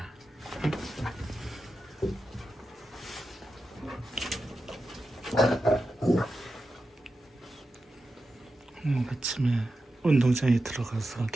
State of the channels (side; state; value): both; normal; correlation 0.90